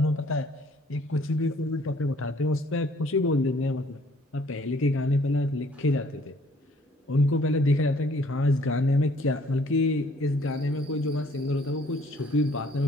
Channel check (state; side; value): normal; both; correlation 0.60